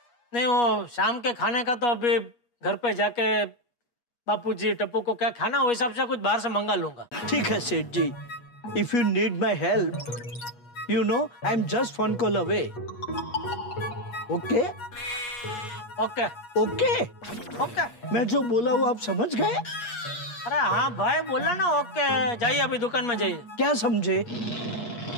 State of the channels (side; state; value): right; late; 8.4 ms